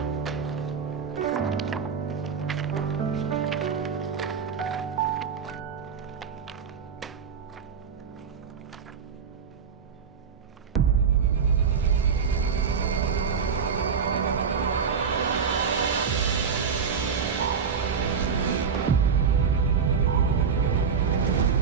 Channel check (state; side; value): quieter; left; 6.4 dB